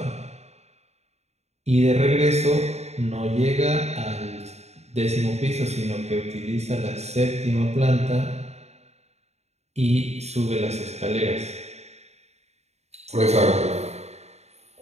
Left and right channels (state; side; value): late; left; 0.31 ms